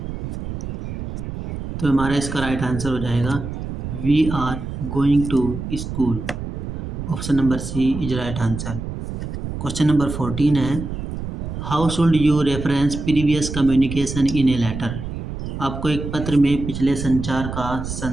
तो हमारा इसका राइट आंसर हो जाएगा we are going to school. Option number C is right answer. Question number 14 है, how should you reference previous communication in a letter. आपको एक पत्र में पिछले संचार का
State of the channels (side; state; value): right; noise; rumble, 6 dB below the sound